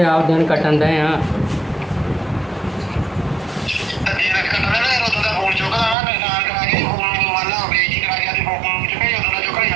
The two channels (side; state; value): left; drops out; at 6.0 s